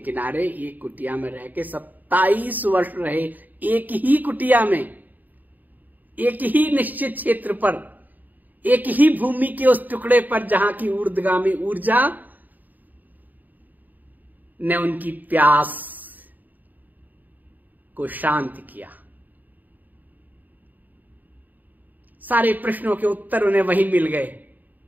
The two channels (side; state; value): left; late; 0.084 ms